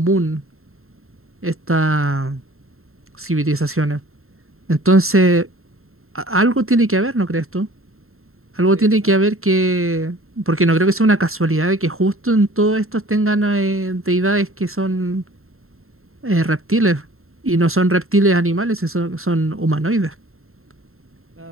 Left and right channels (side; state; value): left; late; 0.62 ms